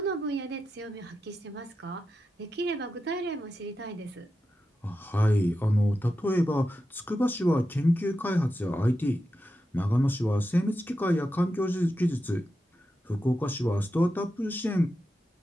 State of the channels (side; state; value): both; normal; correlation 0.89